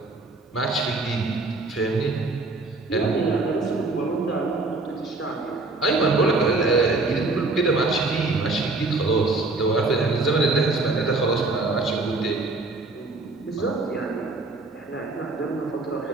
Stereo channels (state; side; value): quieter; left; 3.3 dB